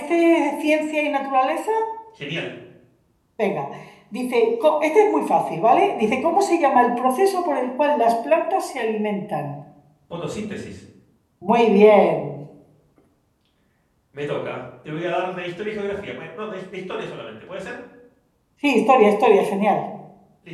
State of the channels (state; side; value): identical; both; correlation 1.00